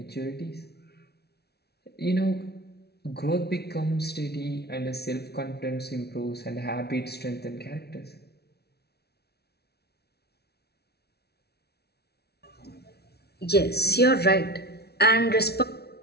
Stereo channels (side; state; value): right; late; 0.47 ms